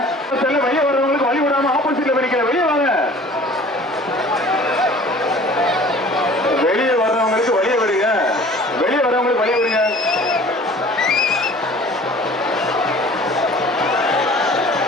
வெளியே வர்றவங்களுக்கு வழி விடாம ஆப்போசிட்ல போய் வெளியே வாங்க. வெளியே வர்றவங்களுக்கு வழியை விடுங்க. வெளியே வர்றவங்களுக்கு வழியை விடுங்க.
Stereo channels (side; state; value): both; normal; correlation 0.47